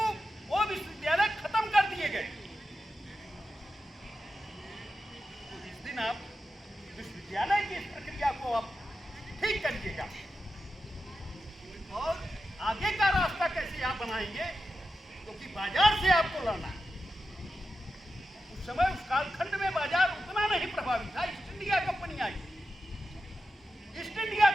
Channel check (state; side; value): normal; both; correlation 0.91